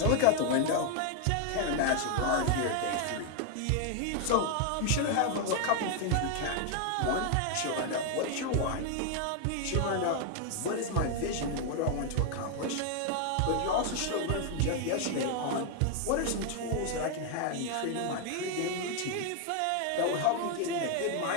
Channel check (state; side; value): different; both; correlation 0.00